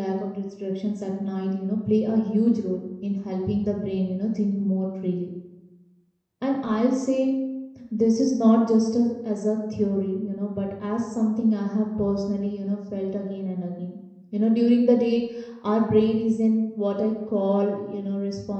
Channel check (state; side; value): identical; both; correlation 1.00